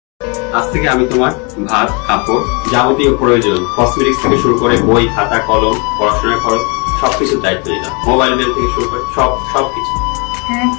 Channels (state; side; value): quieter; right; 32.5 dB